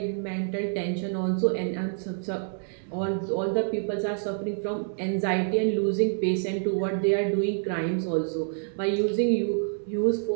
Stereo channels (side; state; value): left; silent; digital silence